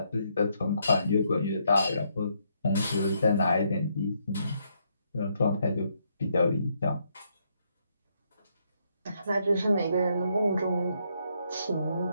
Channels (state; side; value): inverted; both; correlation -0.75